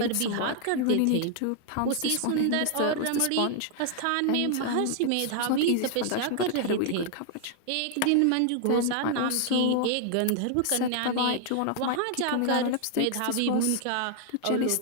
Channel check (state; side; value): different; both; correlation 0.00